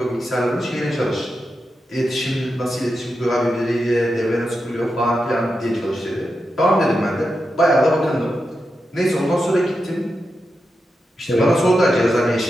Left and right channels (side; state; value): both; normal; correlation 0.88